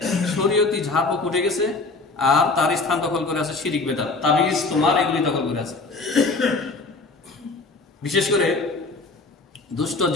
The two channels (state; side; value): quieter; right; 3.7 dB